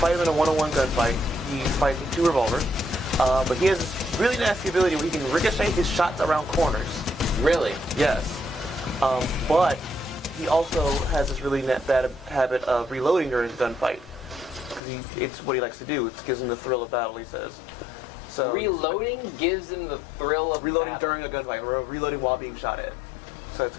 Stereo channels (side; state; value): right; drops out; at 14.8 s